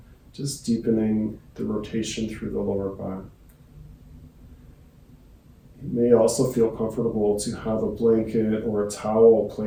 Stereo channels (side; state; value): both; identical; correlation 1.00